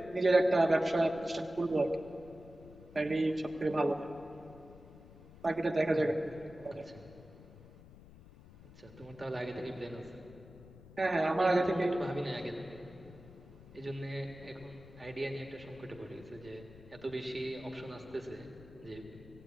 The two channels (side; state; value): left; noise; rumble, 19 dB below the sound